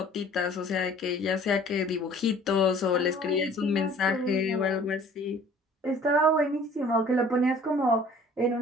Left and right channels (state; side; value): normal; both; correlation 0.52